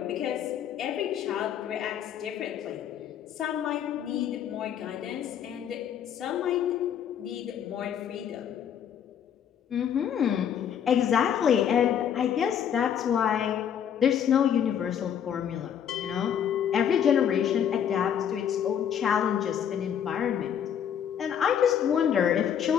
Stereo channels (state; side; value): quieter; right; 8.9 dB